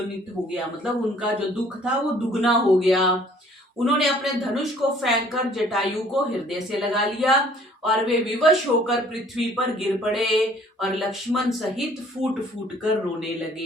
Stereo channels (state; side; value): normal; both; correlation 0.57